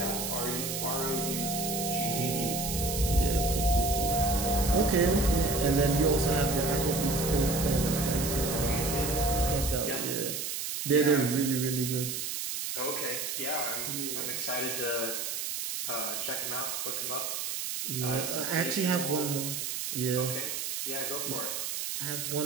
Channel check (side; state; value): right; noise; hiss, 3 dB below the sound